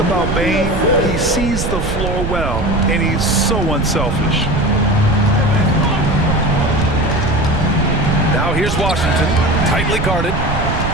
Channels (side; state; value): right; noise; rumble, 3 dB below the sound